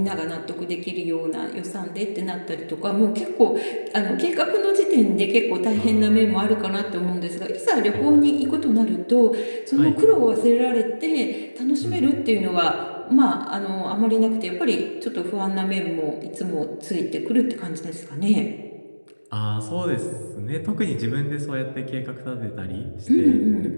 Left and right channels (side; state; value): both; inverted; correlation -1.00